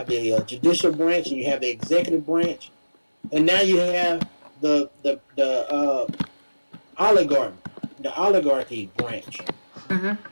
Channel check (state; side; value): inverted; both; correlation -1.00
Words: the judicial branch, and you have the executive branch, and now you have the oligarchy, the oligarchy branch.